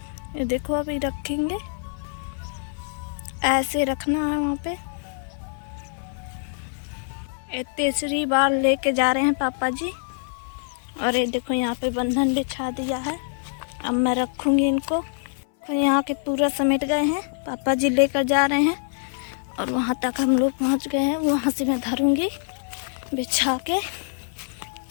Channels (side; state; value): right; silent; 62 dB below the other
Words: देखो अभी रखेंगे, ऐसे रखना है वहाँ पे। ये तीसरी बार लेके जा रहे हैं पापा जी। और ये देखो यहाँ पे बंधन बिछा दिया है। अब मैं रखूँगी इनको। तो यहाँ के पूरा समेट गए हैं, पापा जी लेकर जा रहे हैं और वहाँ तक हम लोग पहुँच गए हैं। वहाँ से मैं धरूँगी बिछा के